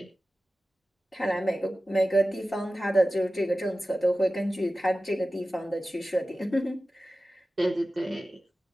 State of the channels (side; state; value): both; normal; correlation 0.95